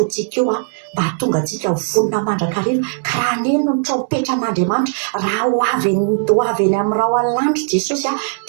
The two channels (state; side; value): silent; left; digital silence